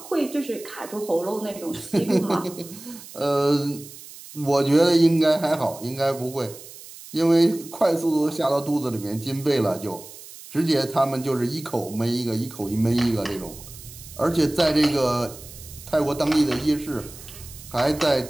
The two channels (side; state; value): right; noise; hiss, 17 dB below the sound